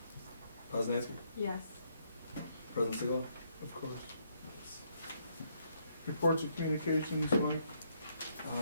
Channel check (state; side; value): inverted; both; correlation -0.72